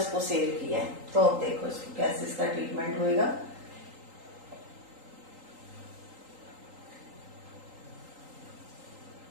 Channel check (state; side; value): late; left; 3.8 ms